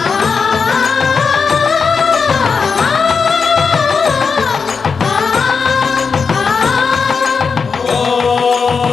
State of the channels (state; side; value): quieter; right; 5.4 dB